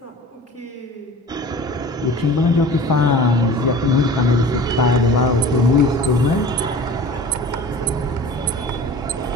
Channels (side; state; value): both; normal; correlation 0.40